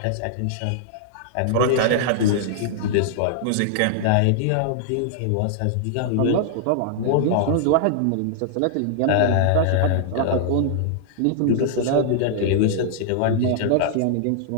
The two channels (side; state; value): both; different; correlation -0.01